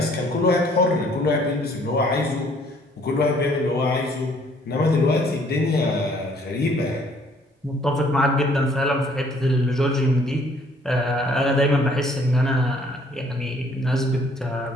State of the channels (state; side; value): normal; both; correlation 0.61